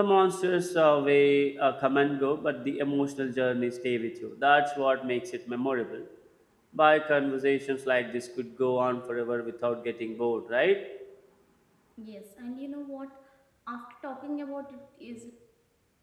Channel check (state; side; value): identical; both; correlation 1.00